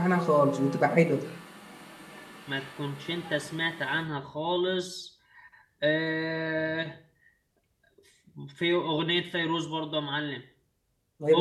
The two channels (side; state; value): both; identical; correlation 1.00